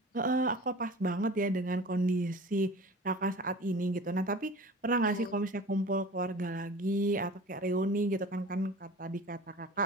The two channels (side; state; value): both; normal; correlation 0.40